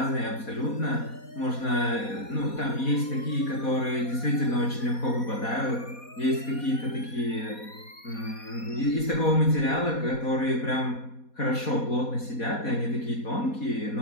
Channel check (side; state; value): right; late; 4.2 ms